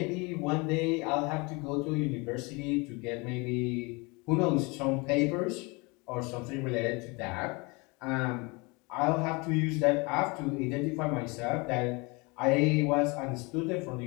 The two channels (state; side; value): quieter; right; 27.6 dB